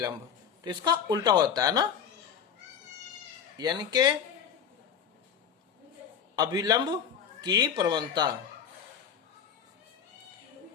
तो इसका उल्टा होता है ना, यानी कि अभिलंब की प्रवणता।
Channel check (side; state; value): right; quieter; 7.8 dB